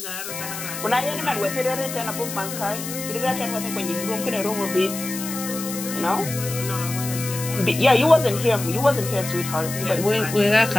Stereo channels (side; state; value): left; noise; hiss, 8 dB below the sound